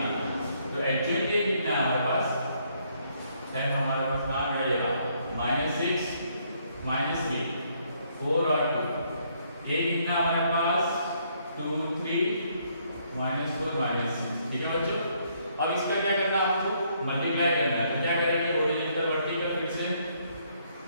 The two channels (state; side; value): inverted; both; correlation -0.70